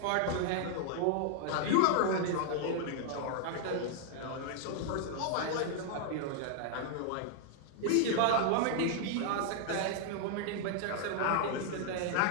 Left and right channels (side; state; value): both; different; correlation -0.01